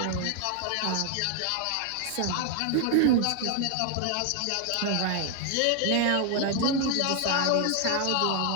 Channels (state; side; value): different; both; correlation 0.00